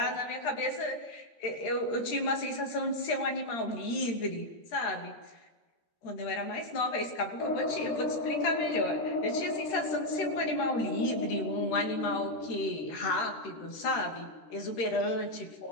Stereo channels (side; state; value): right; late; 13 ms